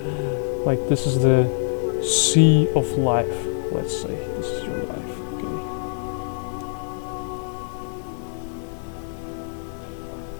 Like this is the sea of life, let's say. This is your life, okay?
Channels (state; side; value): silent; right; digital silence